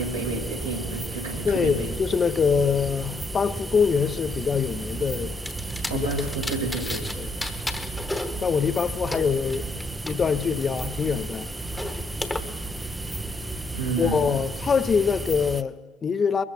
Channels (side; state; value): right; quieter; 3.5 dB